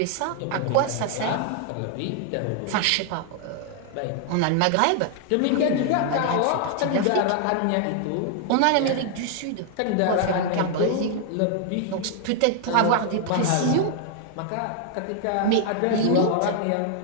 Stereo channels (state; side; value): different; both; correlation 0.00